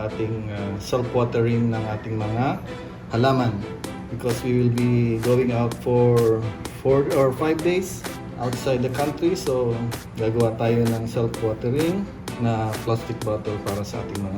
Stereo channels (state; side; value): identical; both; correlation 1.00